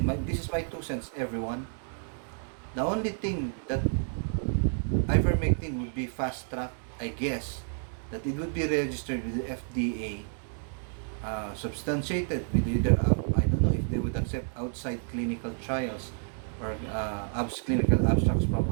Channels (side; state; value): left; silent; 58 dB below the other